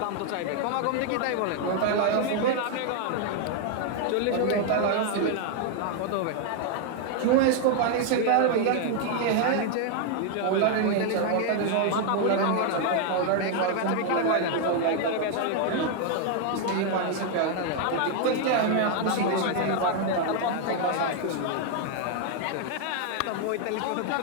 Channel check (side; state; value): both; different; correlation 0.00